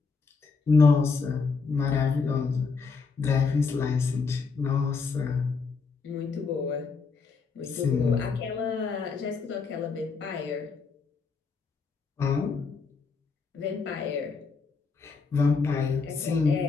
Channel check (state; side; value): quieter; right; 4.9 dB